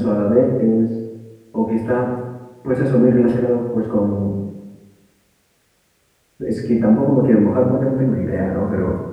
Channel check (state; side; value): identical; both; correlation 1.00